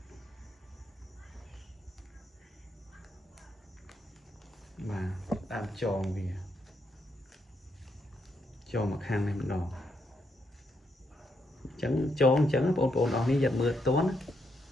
បាទដើមចងវាចងមកខាងនេះម្ដងអញ្ចឹងចងអញ្ចឹងបងប្អូនអស់នេះយកមើលតន់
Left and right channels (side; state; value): both; normal; correlation 0.78